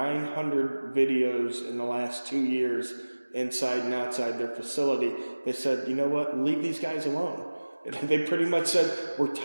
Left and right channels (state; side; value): inverted; both; correlation -1.00